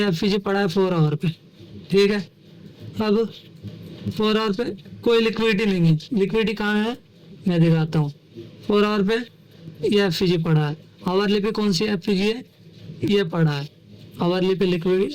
एफपीजी पड़ा है 4 आवर पे, ठीक है। अब 4 आवर पे कोई लिक्विडिटी नहीं है, लिक्विडिटी कहाँ है मैं दिखाता हूँ। 4 आवर पे ये एफपीजी पड़ा है, आवरली पे कौन सी एफपीजी है, ये पड़ा है, आवरली पे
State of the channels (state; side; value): identical; both; correlation 1.00